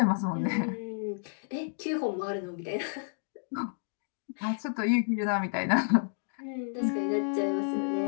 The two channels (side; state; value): right; silent; digital silence